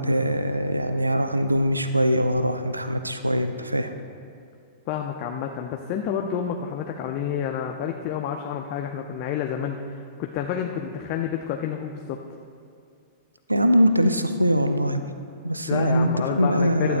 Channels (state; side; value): inverted; both; correlation -0.70